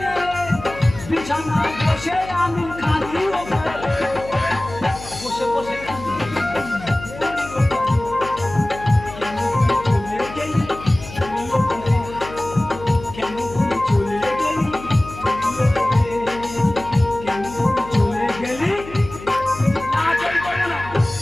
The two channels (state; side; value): noise; left; hum, 14 dB below the sound